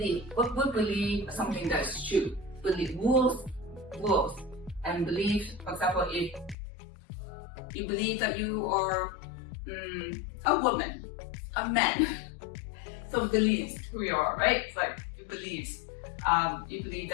What we believe something that's true. Believe rules, and belief. For example, if you believe that you are a woman, a man, so beliefs who you are, right? It's like you believe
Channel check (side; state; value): right; drops out; at 6.6 s